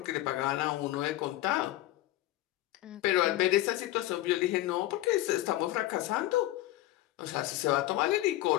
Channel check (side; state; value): right; quieter; 16.0 dB